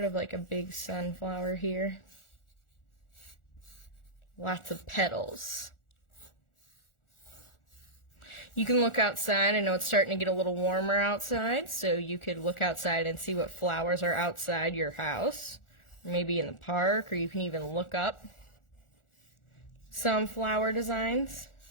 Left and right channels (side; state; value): right; late; 1.4 ms